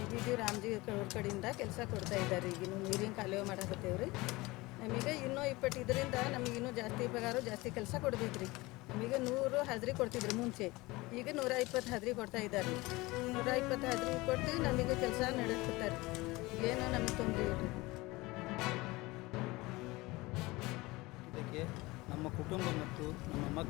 ರಾಮ್ಜಿ ಅವ್ರ ಕಡೆಯಿಂದ ಕೆಲಸ ಕೊಡ್ತಾ ಇದ್ದಾರೆ. ಈಗಿನ್ನೂ ನೀರಿನ ಕಾಲುವೆ ಮಾಡಕತ್ತೇವೆ ರೀ. ನಮಗೆ ಇನ್ನೂ 20 ಇದರಿಂದ ನಮಗೆ ಇನ್ನೂ ಜಾಸ್ತಿ ಪಗಾರ, ಜಾಸ್ತಿ ಕೆಲಸ ಕೊಡ್ಬೇಕು ರೀ. ನಮಗೆ 100 ಹಾಜರಿ ಕೊಡ್ತಿದ್ರು ಮುಂಚೆ, ಈಗ 120 ಹಾಜರಿ ಕೊಡ್ತಾ ಇದ್ದಾರೆ. 120 ಹಾಜರಿ ಕೊಟ್ಟು ನಮಗೆ ಕೆಲಸ ನಡೆಸ್ತಾರೆ. ಏನೋ ನಮಗೆ ತೊಂದರೆ ಇಲ್ಲ. ಇದಕ್ಕೆ ನಮ್ಮ ಕುಟುಂಬ ಮತ್ತು ನಮ್ಮ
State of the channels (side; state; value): right; quieter; 21.7 dB